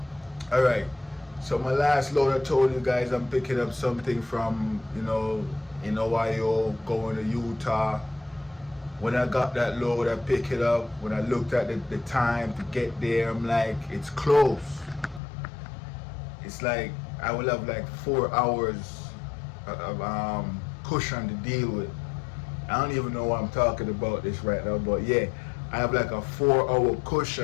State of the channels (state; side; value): drops out; right; at 15.2 s